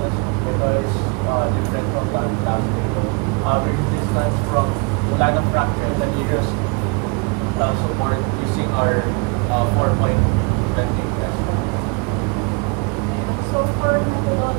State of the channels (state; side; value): quieter; left; 31.9 dB